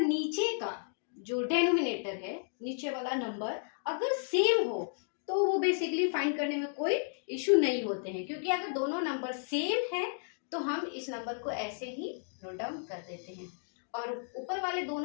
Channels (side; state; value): right; silent; digital silence